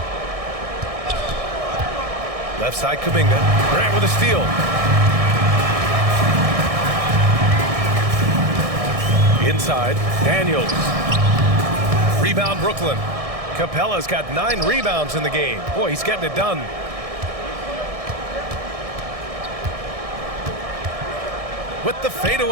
Left side, Kuminga. Grant with a steal. Inside, Daniels. Rebound, Brooklyn. Capella's got 9 rebounds in the game. Boy, he's getting it done. With the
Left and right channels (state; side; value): late; left; 1.6 ms